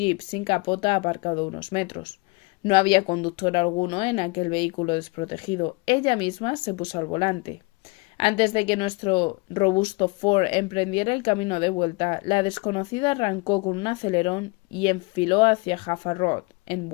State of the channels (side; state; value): right; quieter; 27.6 dB